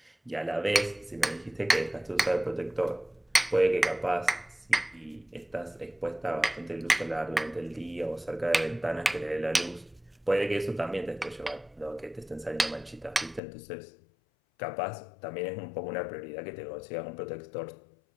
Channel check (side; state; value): right; drops out; at 13.4 s